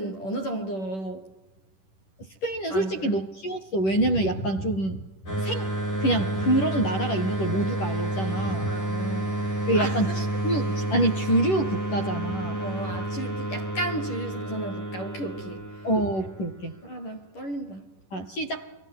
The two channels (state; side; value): late; right; 10 ms